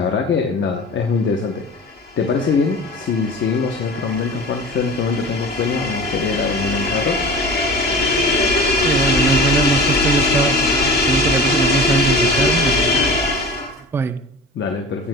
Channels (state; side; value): normal; both; correlation 0.37